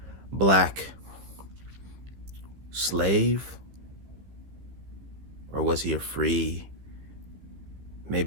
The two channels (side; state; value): left; late; 15 ms